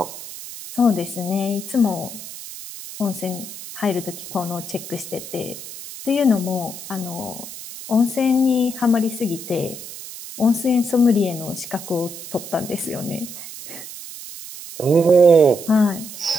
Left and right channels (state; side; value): noise; right; hiss, 12 dB below the sound